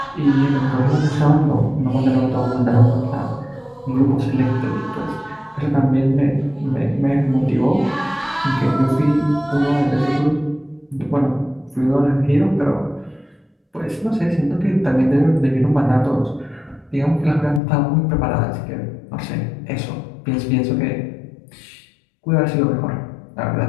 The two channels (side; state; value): right; drops out; at 17.6 s